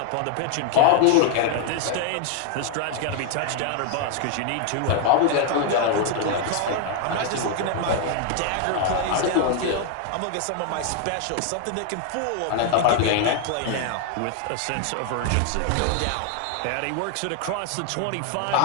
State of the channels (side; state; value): both; different; correlation 0.01